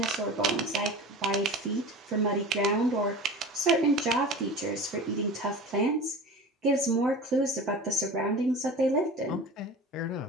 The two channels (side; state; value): both; normal; correlation 0.35